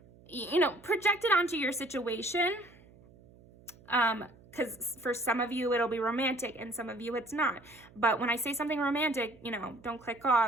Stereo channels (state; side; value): noise; right; hum, 25 dB below the sound